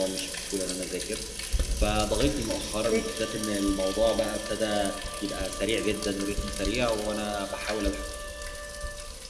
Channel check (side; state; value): both; identical; correlation 1.00